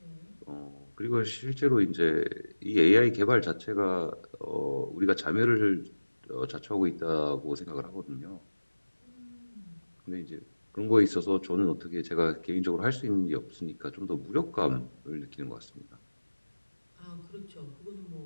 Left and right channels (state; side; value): inverted; both; correlation -1.00